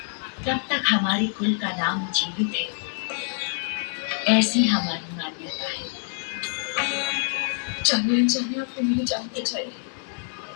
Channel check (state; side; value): silent; right; digital silence